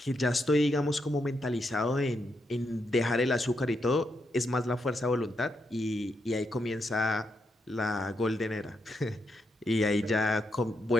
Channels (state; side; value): normal; both; correlation 0.81